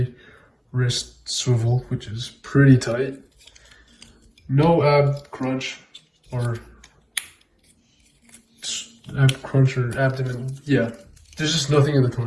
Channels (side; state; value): both; identical; correlation 1.00